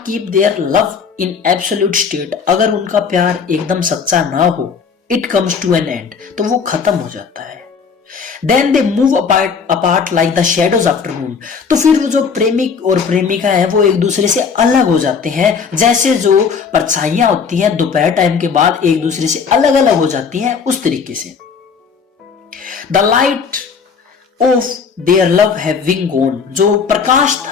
keep their love in absolute state, अगर उनका प्यार एकदम सच्चा ना हो, it comes to an end, तो वो खत्म हो जाता है। Then they move apart like the shadows after noon. तो फिर वो जो प्रेमिक और प्रेमिका है वो एक दूसरे से अलग हो जाते हैं, जैसे जो परछाइयां होती हैं दोपहर टाइम के बाद एक दूसरे से अलग अलग हो जाती हैं, उस तरीके से। The light of their love having gone, जो प्रकाश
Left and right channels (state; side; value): quieter; right; 5.9 dB